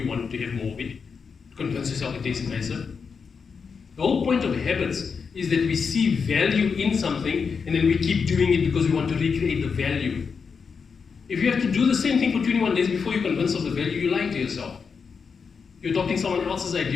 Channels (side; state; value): right; quieter; 5.7 dB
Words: wanted to have more of it, to convince yourself it tastes nicer. The whole point of habits is that we see value in something and then we keep doing it because we want to recreate the value. If you have to do the same thing for 21 days before you're convinced of the value, you're lying to yourself. You're adopting someone else's